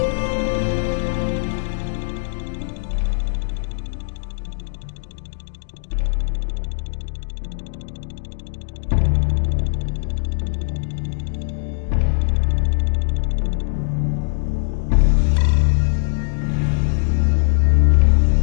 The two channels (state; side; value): silent; right; digital silence